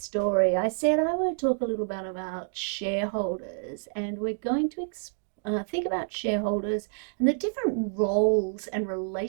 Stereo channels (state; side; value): silent; left; digital silence